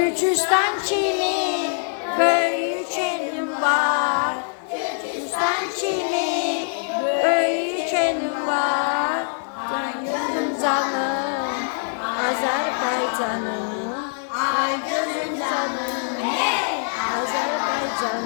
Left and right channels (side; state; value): right; silent; digital silence